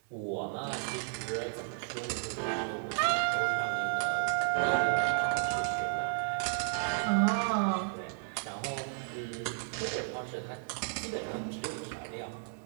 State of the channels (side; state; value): left; silent; 56 dB below the other